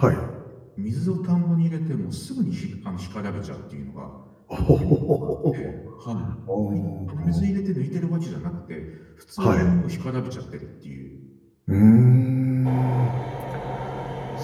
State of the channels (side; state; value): both; identical; correlation 1.00